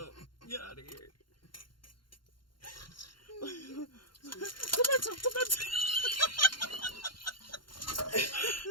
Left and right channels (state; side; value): late; right; 0.72 ms